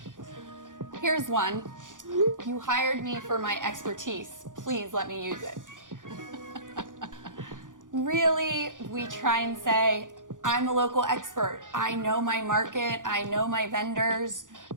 Here's one. You hired me for my expertise. Please let me use it. Really, we try and say, I'm a local expert. I know my market. I know my vendors.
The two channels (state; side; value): late; left; 0.88 ms